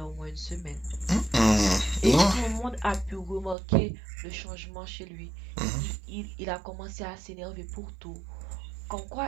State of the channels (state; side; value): drops out; left; at 3.6 s